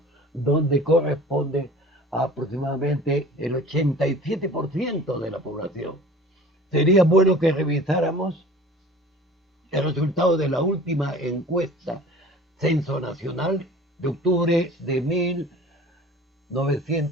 donde corresponde a aproximadamente el 87% de la población. Sería bueno que revisáramos el resultado de la última encuesta Censo Nacional de octubre de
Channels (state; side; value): normal; both; correlation 0.43